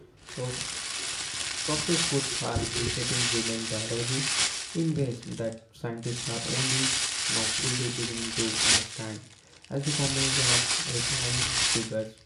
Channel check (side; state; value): both; identical; correlation 1.00